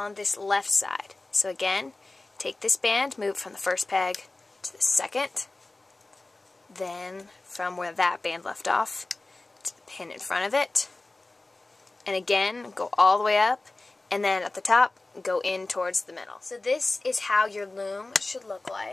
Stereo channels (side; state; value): right; quieter; 3.1 dB